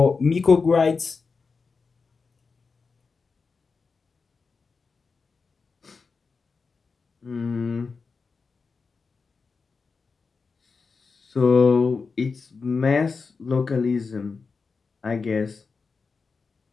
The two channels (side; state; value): right; quieter; 4.7 dB